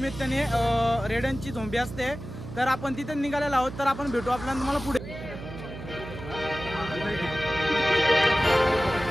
रेड्यांची झोंबी असते, तर आपण तिथे निघालेलो आहोत। तर आपण भेटू आपल्याला तुम्हाला पुढे।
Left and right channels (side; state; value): right; noise; hum, 11 dB below the sound